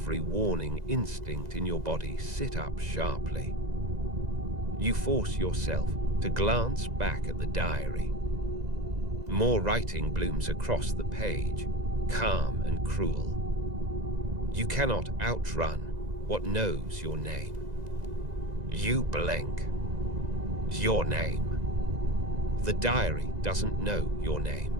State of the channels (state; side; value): late; left; 2.0 ms